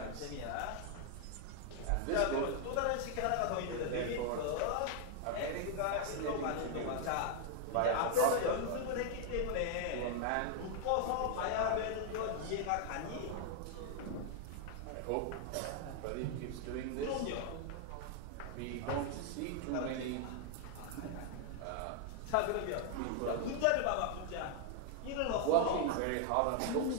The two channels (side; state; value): both; different; correlation 0.00